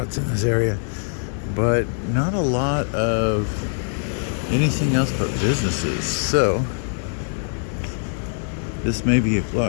in this area, but not a lot of anything else but businesses. So this may be a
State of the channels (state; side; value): silent; right; digital silence